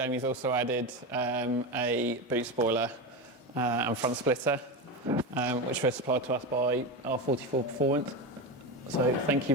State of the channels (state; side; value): normal; both; correlation 0.18